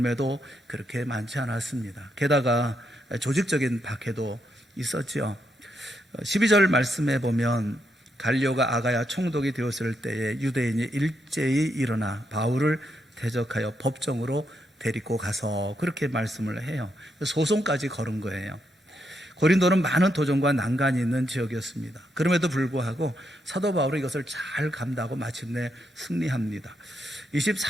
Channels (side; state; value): both; normal; correlation 0.80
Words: 그렇게 많지 않았습니다. 게다가 조직적인 박해도 있었죠. 12절 말씀에 보면 갈리오가 아가야 총독이 되었을 때에 유대인이 일제히 일어나 바울을 대적하여 법정으로 데리고 가서 그렇게 말씀을 해요. 소송까지 걸은 거예요. 고린도는 많은 도전과 난간이 있는 지역이었습니다. 그럼에도 불구하고 사도 바울은 이것을 잘 감당하고 마침내 승리합니다.